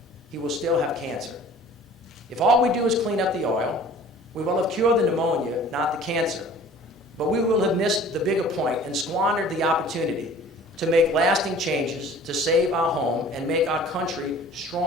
he will still have cancer. If all we do is clean up the oil, we will have cured the pneumonia, not the cancer. But we will have missed the bigger point and squandered the opportunity to make lasting changes, to save our home and make our country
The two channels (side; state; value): both; normal; correlation 0.48